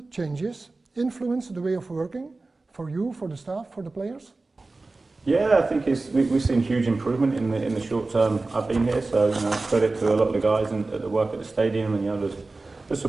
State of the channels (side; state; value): left; quieter; 3.4 dB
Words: changes influence the way of working for you, for the staff, for the players? Yeah, I think we've seen huge improvement in the short term I've been here. So credit to a lot of the guys that work at the stadium, and there's the